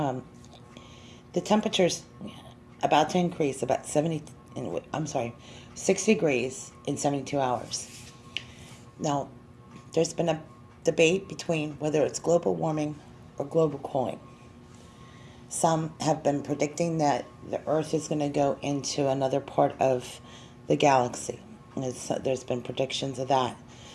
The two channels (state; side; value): identical; both; correlation 1.00